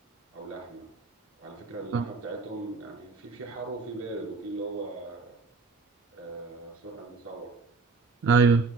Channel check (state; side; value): quieter; left; 4.3 dB